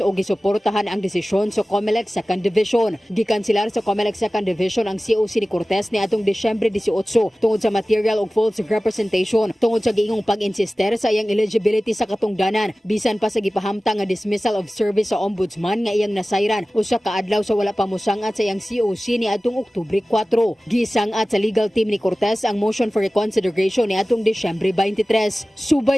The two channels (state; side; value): normal; both; correlation 0.97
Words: o gisuportahan ang desisyon sa COMELEC Second Division. Gikansilar sa COMELEC Second Division ang COC ni Cortez ni atong Disyembre 18 tungod sa material o false representation tungod sa giingong pag-insister sa iyang eligibility sa katungdanan bisan pa sa gipahamtang nga dismissal of service sa ombudsman nga iyang nasayran usa ka adlaw sa wala pa mosangat sa iyang COC ni atong Oktubre 4. Gisangat sa legal team ni Cortez ang motion for reconsideration ni atong Disyembre 23.